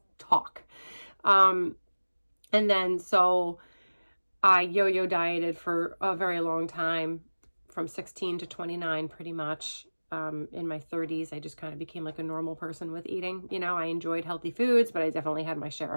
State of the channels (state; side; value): inverted; both; correlation -1.00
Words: talk. And then so I yo-yo dieted for a very long time, from 16 to 29 pretty much. In my 30s, I just kind of became like a normal person with eating. I enjoyed healthy foods, but I definitely had my share